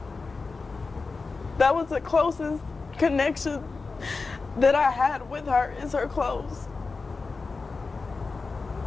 That was the closest connection that I had with her, is her clothes.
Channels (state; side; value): quieter; right; 4.2 dB